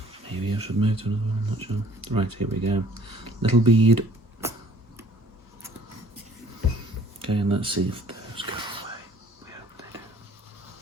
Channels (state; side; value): normal; both; correlation 0.56